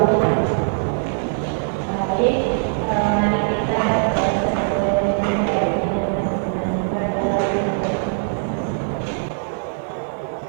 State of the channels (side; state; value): left; silent; 58 dB below the other